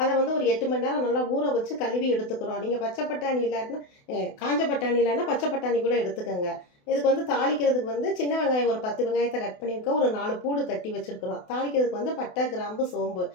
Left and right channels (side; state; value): right; late; 28 ms